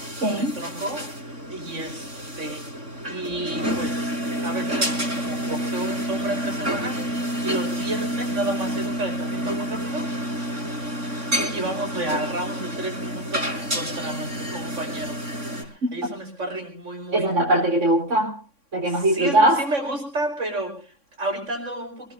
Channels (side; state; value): left; late; 3.6 ms